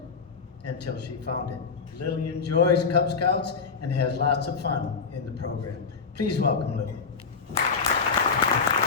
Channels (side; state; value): right; quieter; 5.2 dB